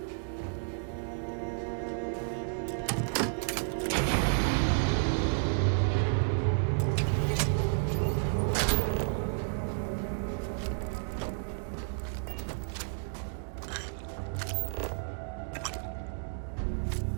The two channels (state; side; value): silent; left; digital silence